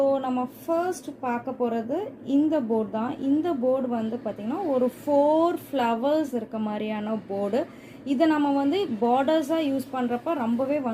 நம்ம ஃபர்ஸ்ட் பார்க்க போகிறது இந்த போர்டு தான். இந்த போர்டு வந்து பார்த்திங்கன்னா ஒரு 4 ஃப்ளவர்ஸ் இருக்க மாதிரியான போர்டு. இதை நம்ம வந்து பார்டர்ஸாக யூஸ் பண்ணுறப்ப ரொம்பவே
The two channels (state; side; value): identical; both; correlation 1.00